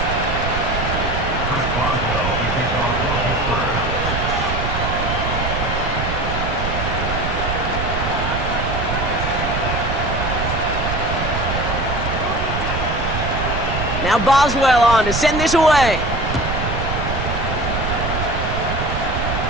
Now Boswell on to send this away.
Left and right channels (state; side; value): noise; right; rumble, 3 dB below the sound